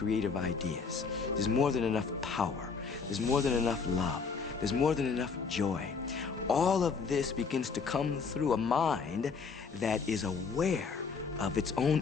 ideas. There's more than enough power. There's more than enough love. There's more than enough joy. All of this begins to come through a mind that is aware of its own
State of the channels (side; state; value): right; quieter; 5.3 dB